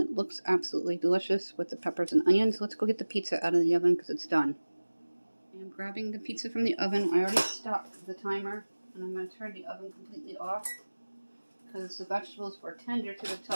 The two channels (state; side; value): inverted; both; correlation -1.00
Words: looks absolutely delicious with the peppers and onions. Let's go get the pizza out of the oven because it's done. I am grabbing the pizza from the oven. I already stopped the timer, and I'm going to turn the oven completely off because the vegetables were tender to the